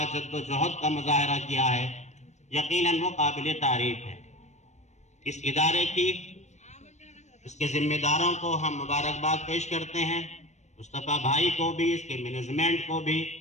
جد و جہد کا مظاہرہ کیا ہے، یقیناً وہ قابل تعریف ہے۔ اس ادارے کی، اس کے ذمہ داروں کو ہم مبارکباد پیش کرتے ہیں، مصطفیٰ بھائی کو بھی، اس کے مینجمنٹ کو بھی،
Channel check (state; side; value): late; right; 0.34 ms